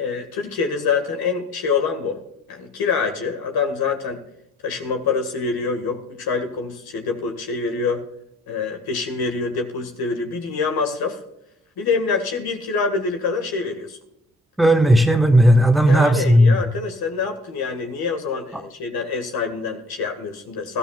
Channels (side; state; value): both; normal; correlation 0.58